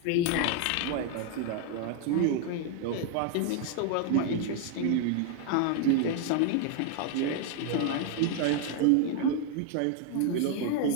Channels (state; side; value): different; both; correlation 0.00